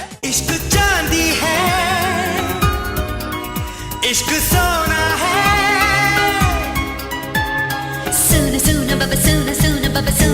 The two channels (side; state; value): both; identical; correlation 1.00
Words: इश्क चांदी है, इश्क सोना है। सोना सोना बाबा सोना सोना बाबा